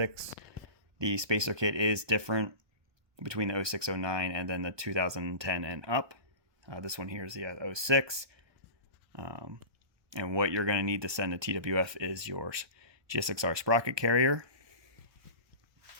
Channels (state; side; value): late; left; 1.2 ms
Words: The spacer kit is different between the 0609 and then the 2010 and up. This one here is the 06. And what you're going to need to send to TWF is your GSXR sprocket carrier